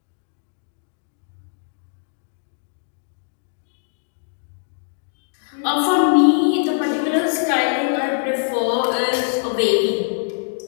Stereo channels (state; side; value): silent; right; digital silence